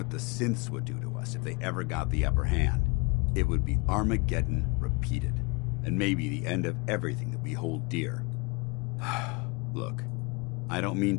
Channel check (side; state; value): right; quieter; 28.0 dB